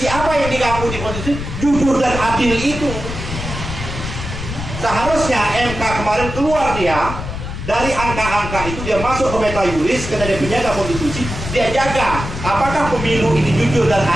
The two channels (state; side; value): noise; left; rumble, 7 dB below the sound